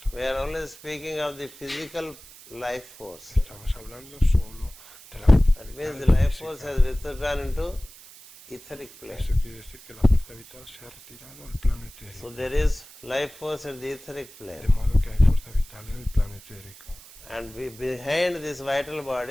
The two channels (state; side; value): noise; right; hiss, 20 dB below the sound